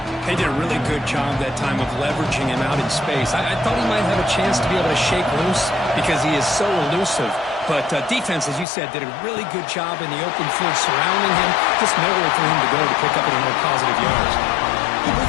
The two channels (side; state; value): right; drops out; at 8.7 s